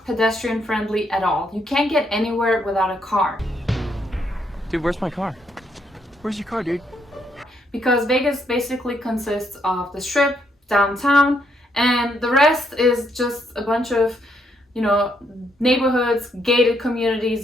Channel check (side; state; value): both; normal; correlation 0.74